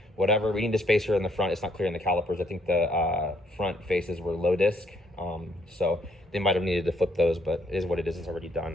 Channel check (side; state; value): both; normal; correlation 0.69